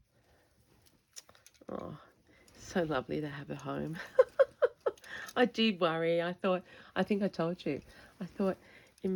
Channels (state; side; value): identical; both; correlation 1.00